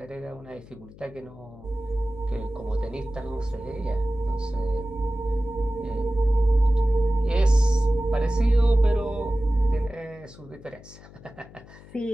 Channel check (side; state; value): left; noise; hum, 20 dB below the sound